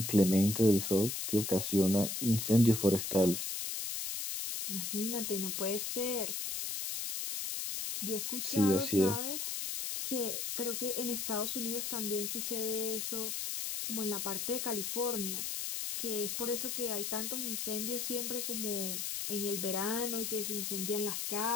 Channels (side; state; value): left; noise; hiss, 3 dB below the sound